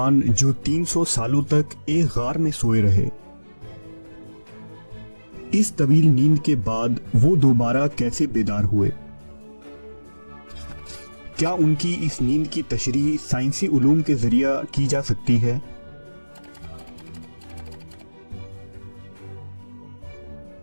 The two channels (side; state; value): both; inverted; correlation -1.00